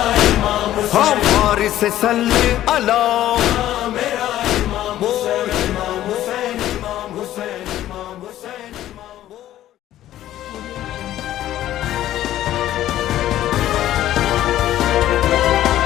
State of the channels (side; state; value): right; quieter; 13.2 dB